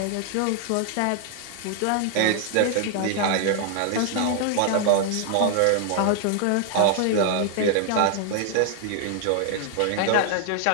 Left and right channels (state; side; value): different; both; correlation 0.00